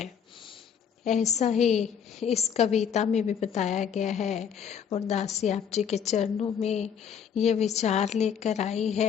ऐसा ही इस कविता में भी बताया गया है और दासी आप जी के चरणों में ये विचार लेकर आई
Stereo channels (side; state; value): right; quieter; 7.8 dB